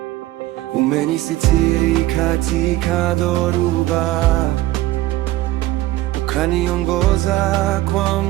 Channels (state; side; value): quieter; left; 16.5 dB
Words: Umenisitiri katika dhoruba, ukaniongoza kwa